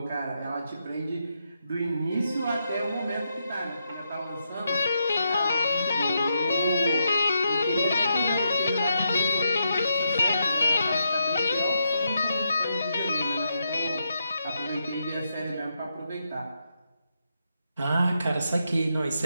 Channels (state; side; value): inverted; both; correlation -0.82